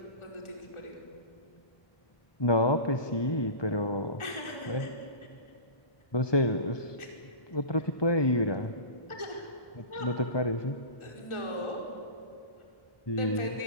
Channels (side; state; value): right; late; 1.4 ms